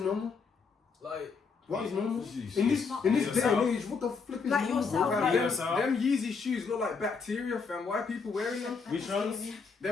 normal? Like, What is normal? Jeez. In this day and age, what the flip is Like normal? yourself, bro? like- Them Yeezy shoes look like bacteria, fam. Why are people wearing them? Which ones?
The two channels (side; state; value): right; quieter; 5.2 dB